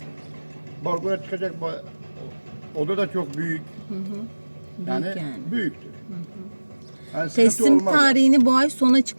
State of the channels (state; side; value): inverted; both; correlation -1.00